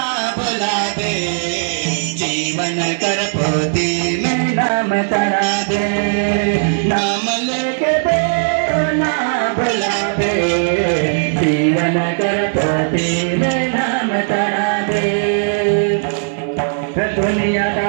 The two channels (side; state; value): left; silent; digital silence